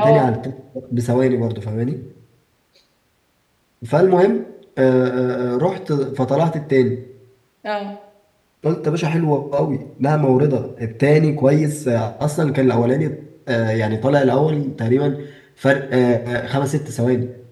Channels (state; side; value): identical; both; correlation 1.00